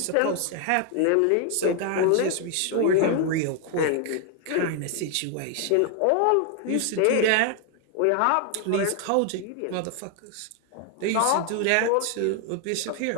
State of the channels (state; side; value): different; both; correlation 0.00